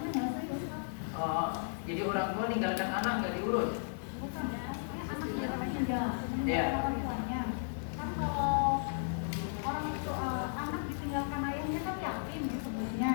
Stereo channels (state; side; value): silent; right; 55 dB below the other